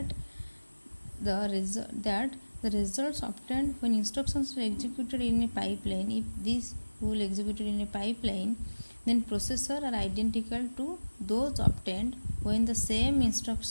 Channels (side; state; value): both; inverted; correlation -1.00